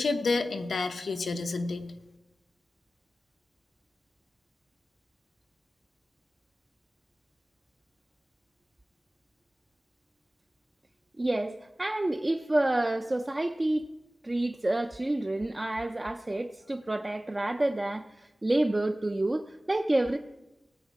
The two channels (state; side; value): normal; both; correlation 0.97